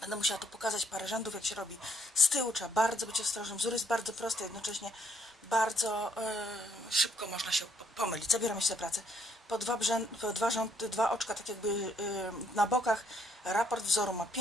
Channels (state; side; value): normal; both; correlation 0.68